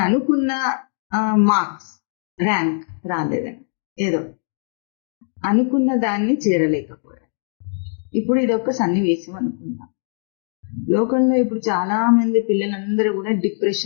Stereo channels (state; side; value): silent; right; digital silence